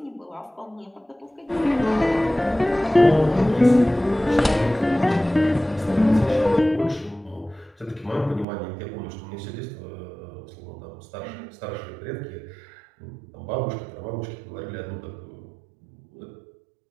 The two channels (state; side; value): drops out; left; at 8.5 s